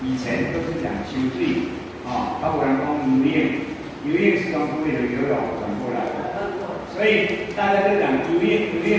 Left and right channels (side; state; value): both; identical; correlation 1.00